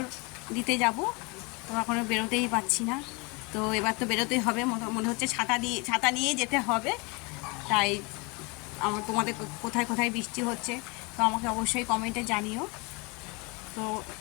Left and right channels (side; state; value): right; quieter; 28.8 dB